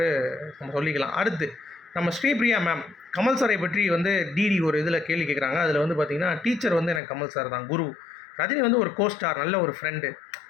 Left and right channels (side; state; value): right; drops out; at 7.0 s